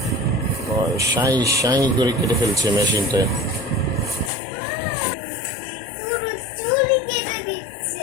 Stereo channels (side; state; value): right; drops out; at 4.3 s